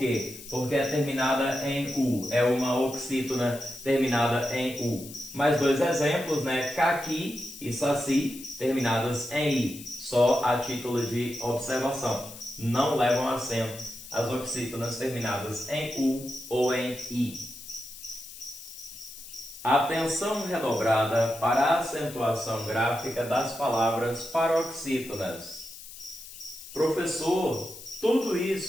Porque é terminada em U. É uma oxítona terminada em U. Mais dois exemplos, né? Caqui e saci, terminadas em I. Só a título de observação. Não levam acento as oxítonas terminadas em U ou em I. Atenção redobrada para a acentuação gráfica das palavras paroxítonas. Professor, tudo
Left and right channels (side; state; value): left; noise; hiss, 15 dB below the sound